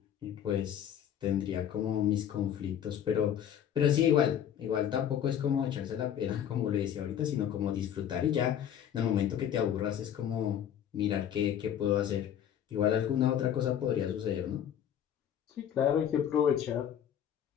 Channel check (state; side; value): quieter; right; 9.7 dB